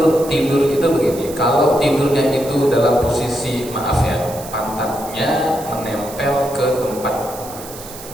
tidur itu begini. Kalau tidurnya itu dalam posisi, maaf ya, pantatnya menempel ke tempat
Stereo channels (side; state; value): right; noise; hiss, 14 dB below the sound